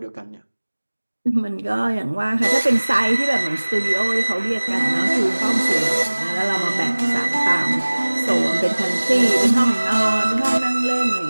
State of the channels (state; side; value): inverted; both; correlation -1.00